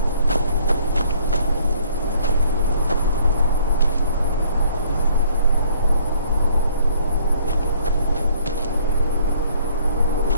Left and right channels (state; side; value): inverted; both; correlation -0.60